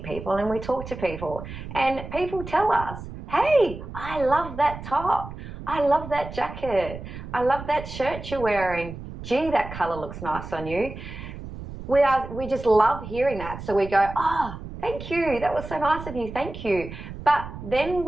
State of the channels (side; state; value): right; noise; rumble, 11 dB below the sound